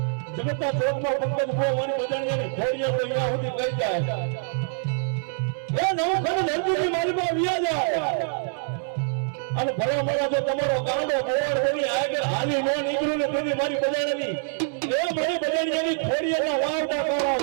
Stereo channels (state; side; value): silent; left; 61 dB below the other